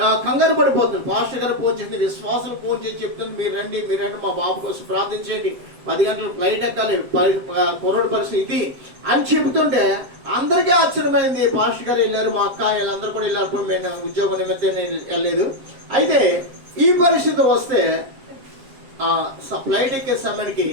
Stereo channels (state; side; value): late; left; 7.7 ms